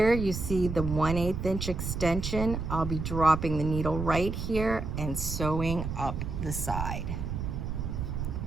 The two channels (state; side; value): noise; right; rumble, 4 dB below the sound